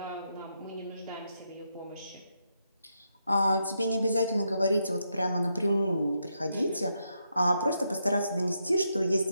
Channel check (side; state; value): both; inverted; correlation -0.81